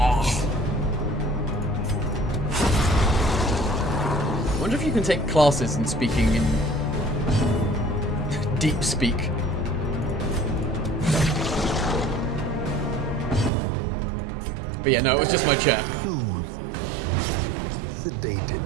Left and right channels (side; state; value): left; drops out; at 13.5 s